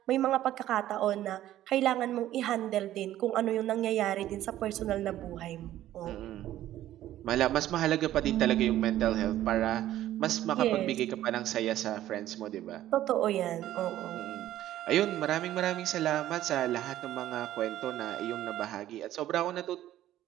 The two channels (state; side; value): quieter; left; 13.3 dB